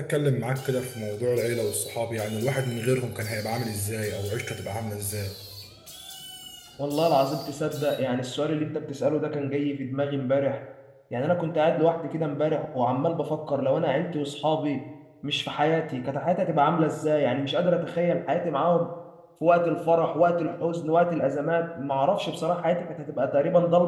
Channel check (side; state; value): both; identical; correlation 1.00